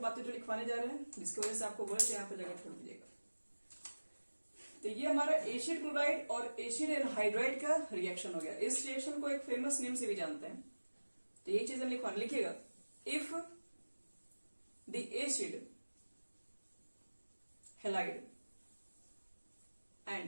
बातें जो लिखवाने जा रहे हैं, जिसकी वजह से आपको बोले तो यहां पर जगह छोड़ दीजिएगा। तो ये हमारा एसिड क्लोराइड और एसिड एनहाइड्राइड का रिएक्शन हो गया। इस रिएक्शन को एक फेमस नेम से भी जानते हैं, तो ये चीज हम लिखिएगा, if the acid halide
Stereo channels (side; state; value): both; inverted; correlation -1.00